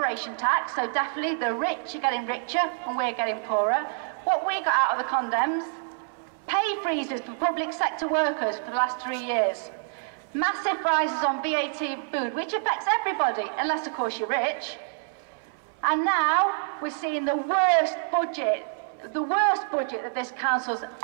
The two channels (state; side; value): silent; left; 60 dB below the other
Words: tax, so definitely the rich are getting richer and we're getting poorer. What we got out of the condems? Pay freezes for public sector workers for the last 3 years. Massive rises on VAT and food, which affects everybody, unless of course you're rich. And now we're seeing the worst budget that this council's